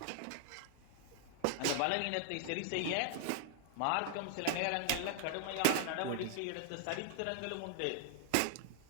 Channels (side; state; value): both; different; correlation 0.00